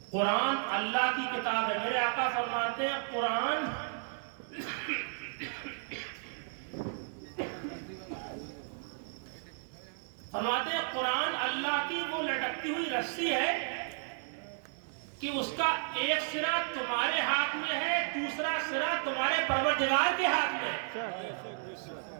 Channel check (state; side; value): silent; left; digital silence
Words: قرآن اللہ کی کتاب ہے، میرے آقا فرماتے ہیں قرآن قرآن اللہ کی وہ لٹکتی ہوئی رسی ہے کہ اس کا ایک سرا تمہارے ہاتھ میں ہے، دوسرا سرا تمہارے پروردگار کے ہاتھ میں ہے۔